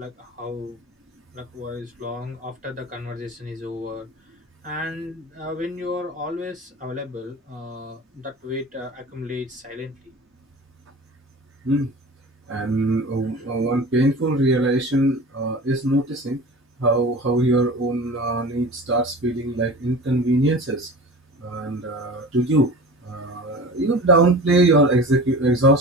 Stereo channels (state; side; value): normal; both; correlation 0.37